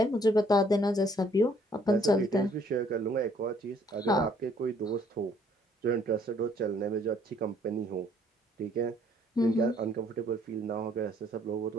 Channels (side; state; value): both; normal; correlation 0.63